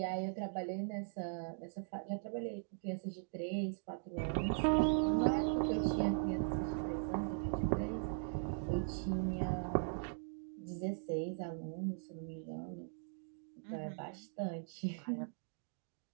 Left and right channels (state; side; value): silent; left; digital silence